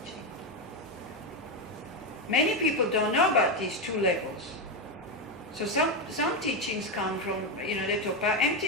Many people don't know about these two levels. So some teachings come from, they talk about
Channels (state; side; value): normal; both; correlation 0.09